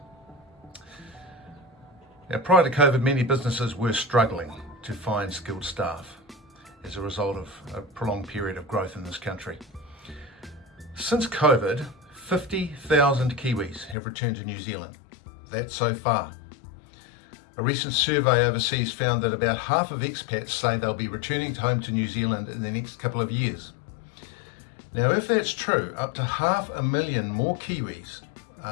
Now, prior to COVID, many businesses were struggling to find skilled staff as a result of a prolonged period of growth in this country. Since COVID, 50,000 Kiwis have returned to New Zealand. That's so far. A recent survey overseas found that about half of expats say they'll be returning home to New Zealand in the next couple of years. Now, if that's true, up to 500,000 more Kiwis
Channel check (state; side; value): drops out; right; at 14.0 s